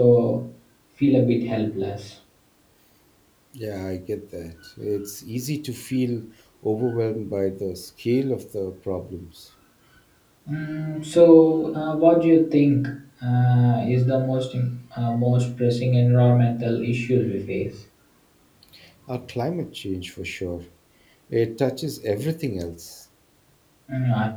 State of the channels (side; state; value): both; identical; correlation 1.00